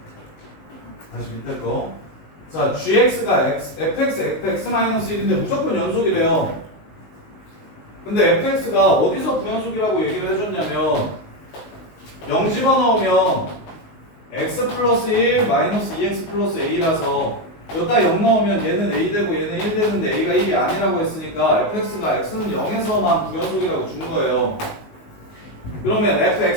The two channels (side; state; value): right; late; 19 ms